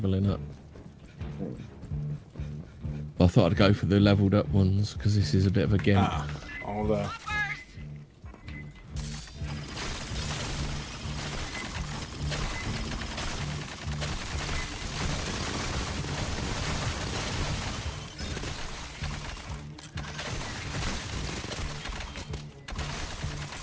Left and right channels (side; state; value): both; identical; correlation 1.00